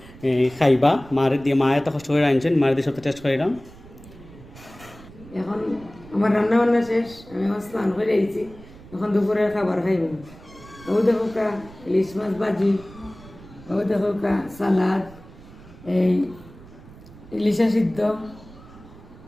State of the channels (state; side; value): noise; right; rumble, 20 dB below the sound